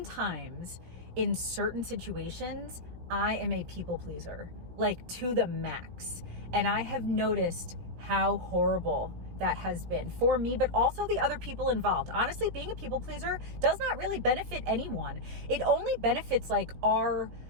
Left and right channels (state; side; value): late; left; 17 ms